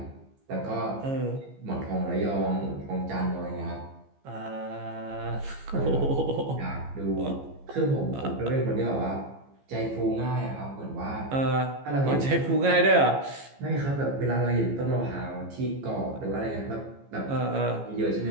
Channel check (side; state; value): left; late; 15 ms